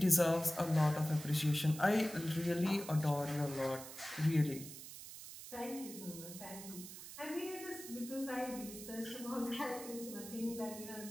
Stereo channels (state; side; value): noise; right; hiss, 12 dB below the sound